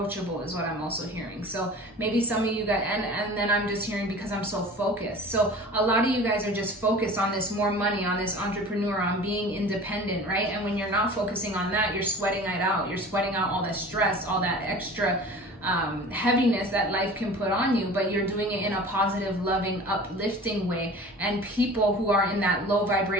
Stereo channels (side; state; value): both; normal; correlation 0.41